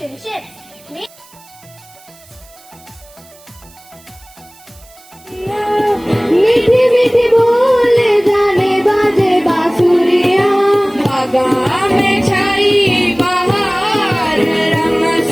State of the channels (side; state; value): right; noise; hiss, 25 dB below the sound